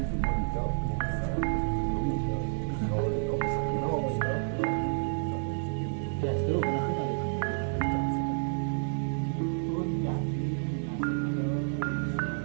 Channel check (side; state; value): left; silent; digital silence